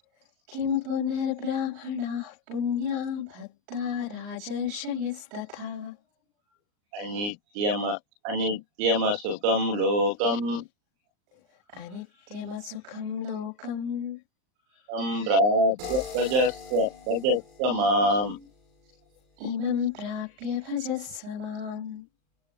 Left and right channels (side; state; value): left; late; 39 ms